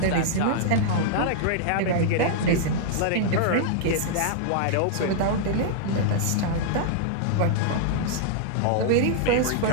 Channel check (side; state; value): both; different; correlation -0.01